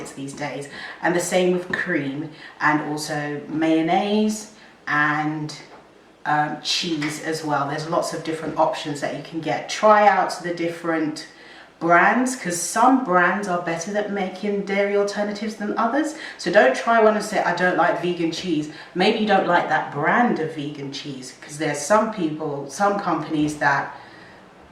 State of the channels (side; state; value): both; identical; correlation 1.00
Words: these days. And the same with cream, and also mayonnaise and cheese as well. There's lots of different options that you can get. Try out the different brands, because some brands are better at making dairy alternatives than others. So don't try one and say, I don't like vegan cheese. Maybe you don't like that brand of vegan cheese, because there's some companies that